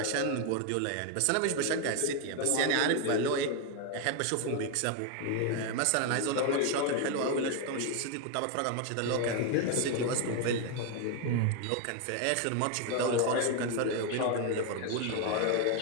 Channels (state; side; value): different; both; correlation 0.01